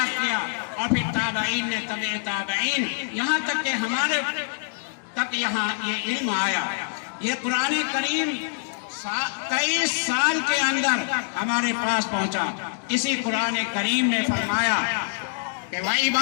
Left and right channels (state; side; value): silent; right; digital silence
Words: کیا، اور پھر تابعین نے تبع تابعین، یہاں تک کہ ہمارے تک یہاں یہ علم آیا۔ یہ قرآن کریم 23 سال کے اندر ہمارے پاس پہنچا۔ اسی قرآن کریم میں فرمایا کہ